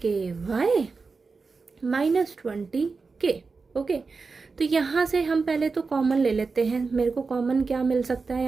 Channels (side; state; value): left; quieter; 4.5 dB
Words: minus 20k। Okay, तो यहाँ से हम पहले तो कॉमन ले लेते हैं। मेरे को कॉमन क्या मिल सकता है,